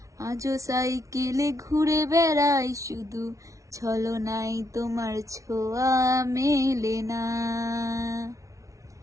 আজও সাইকেলে ঘুরে বেড়াই শুধু, ছলনায় তোমার ছোঁয়া মেলে না।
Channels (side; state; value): left; late; 0.15 ms